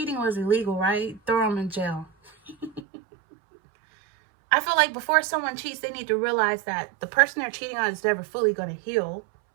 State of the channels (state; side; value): drops out; left; at 2.8 s